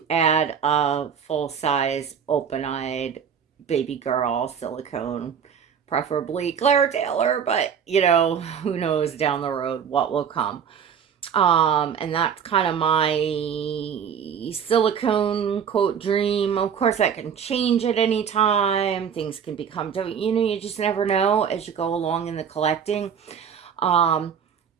add a full size open eyed baby girl silicone preferably Claire Taylor, but you know, who knows down the road what will come. And that's kind of my silicone quote dream. Of course, that can change at any time. Things can become, you know, you just never know as you go along in the collecting.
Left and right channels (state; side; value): quieter; left; 7.5 dB